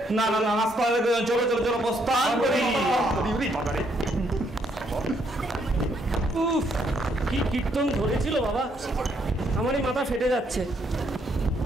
না না না, নাস্তা হবে, চলো চলো চলো প্রস্থান করি। উফ, কি কীর্তন ধরেছিল বাবা, আমারই মাথা ফেটে যাচ্ছে।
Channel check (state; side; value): normal; both; correlation 0.72